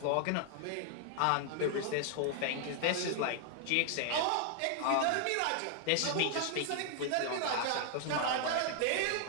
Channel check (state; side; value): different; both; correlation 0.00